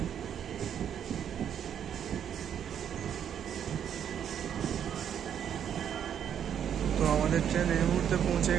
তো আমাদের ট্রেন এই মুহূর্তে পৌঁছে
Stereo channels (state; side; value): quieter; left; 9.0 dB